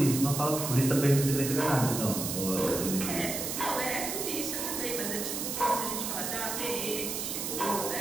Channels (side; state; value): right; noise; hiss, 3 dB below the sound